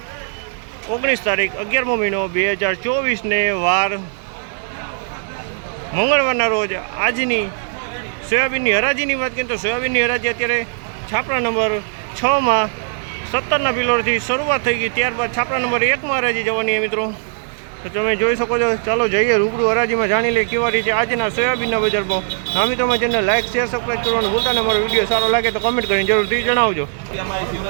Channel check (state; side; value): silent; left; 63 dB below the other